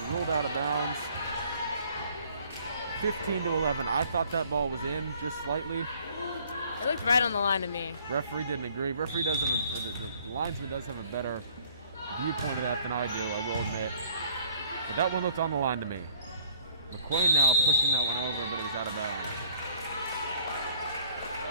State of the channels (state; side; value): inverted; both; correlation -0.58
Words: ruled out of bounds. 15-11. I thought that ball was in just slightly. It looked right on the line to me. Referee didn't agree. Referee does have the linesman does have a better viewpoint of that than I do, I will admit. But that one looked on the line to me. McQuain now pushing that one over, but it was out of bounds.